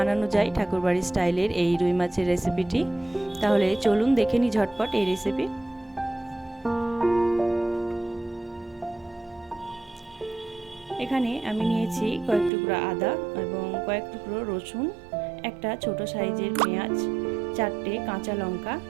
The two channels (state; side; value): drops out; left; at 12.5 s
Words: যায় ঠাকুরবাড়ির স্টাইলের এই রুই মাছের রেসিপিটি। তাহলে চলুন দেখে নিই ঝটপট এই রেসিপি। এখানে আমি নিয়েছি কয়েক টুকরো আদা এবং কয়েক টুকরো রসুন, একটা ছোট সাইজের পেঁয়াজ, 4টে কাঁচা লঙ্কা।